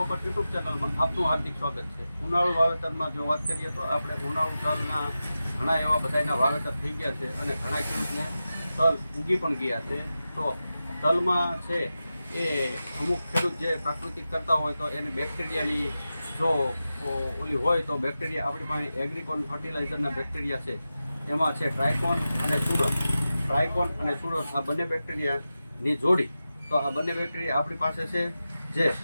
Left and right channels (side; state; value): both; inverted; correlation -0.93